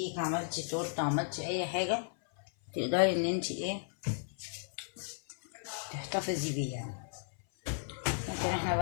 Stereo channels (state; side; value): silent; right; 55 dB below the other